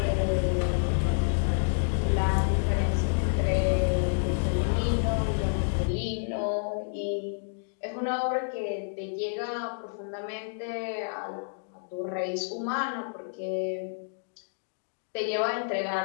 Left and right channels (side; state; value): right; silent; digital silence